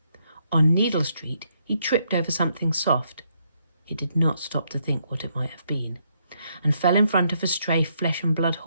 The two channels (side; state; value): both; inverted; correlation -0.75